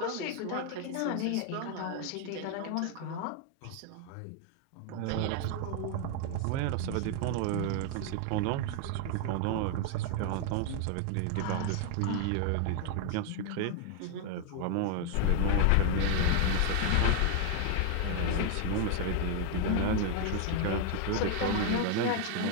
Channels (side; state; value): both; different; correlation 0.00